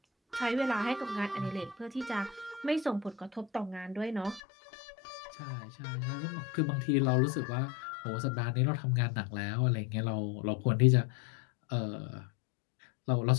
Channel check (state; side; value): drops out; right; at 4.4 s